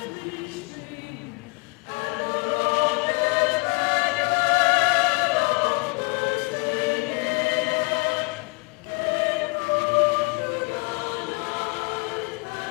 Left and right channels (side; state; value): right; quieter; 29.8 dB